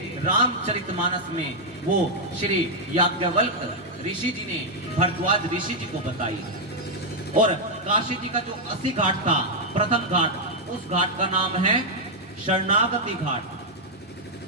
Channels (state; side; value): normal; both; correlation -0.02